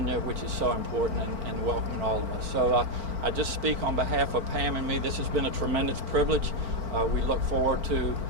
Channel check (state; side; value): late; left; 4.4 ms